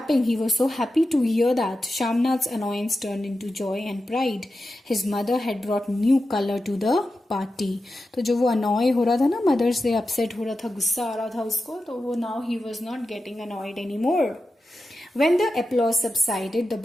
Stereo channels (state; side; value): normal; both; correlation 0.91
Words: He was so happy to hear that. Shamnath's annoyance turned into joy and pride. His mother had brought new color to the party. तो जो वो annoy हो रहा था ना, mother से upset हो रहा था, गुस्सा आ रहा था उसको, तो वो now he was not getting annoyed anymore. When the applause subsided, the